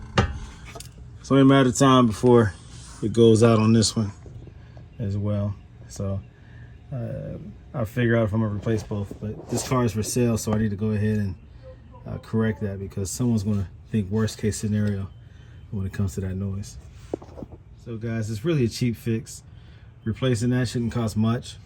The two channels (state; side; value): identical; both; correlation 1.00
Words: It's only a matter of time before it goes out on this one as well. So I'll figure out if I'm gonna replace both. But this car is for sale, so I need to go ahead and correct that, because someone's gonna think worst case scenario when it comes to that noise. So guys, it's really a cheap fix. Replacing that shouldn't cost much.